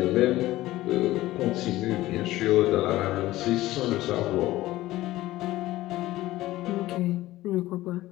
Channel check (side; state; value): right; quieter; 16.5 dB